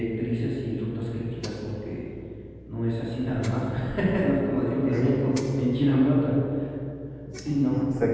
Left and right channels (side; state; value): both; identical; correlation 1.00